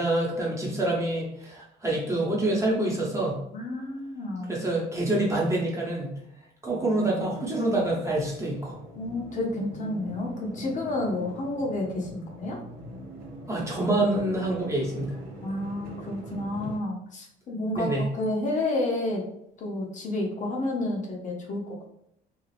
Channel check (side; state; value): both; normal; correlation 0.57